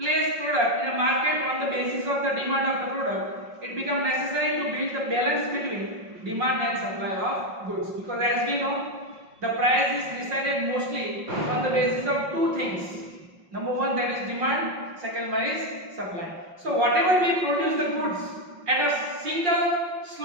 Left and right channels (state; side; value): late; left; 5.5 ms